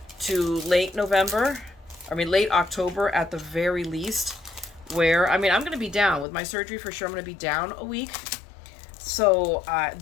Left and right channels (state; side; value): drops out; right; at 6.2 s